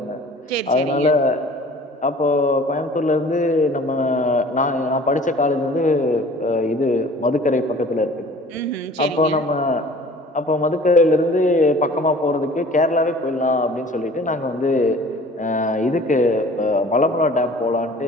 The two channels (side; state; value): both; normal; correlation 0.47